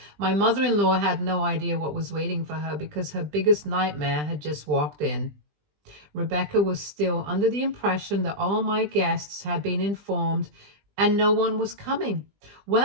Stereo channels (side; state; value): left; late; 20 ms